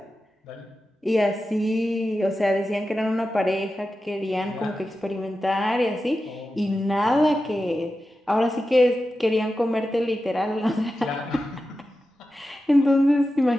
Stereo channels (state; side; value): normal; both; correlation 0.92